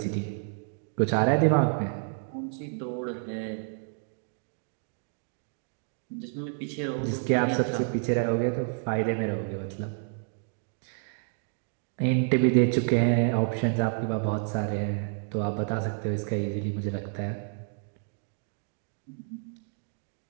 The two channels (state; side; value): silent; left; 58 dB below the other